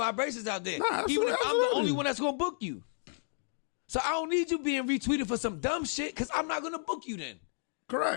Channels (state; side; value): silent; right; digital silence